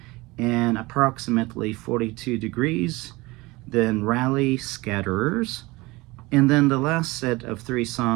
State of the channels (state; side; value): quieter; left; 22.2 dB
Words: and Approximately 42 Degrees. Then Rally, Scatterers. And then the last set of 3